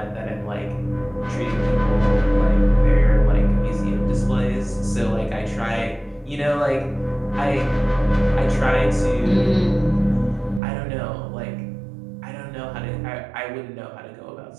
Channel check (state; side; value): drops out; left; at 10.6 s